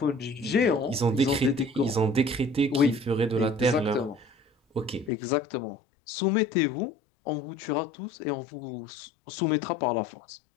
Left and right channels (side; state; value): right; drops out; at 5.1 s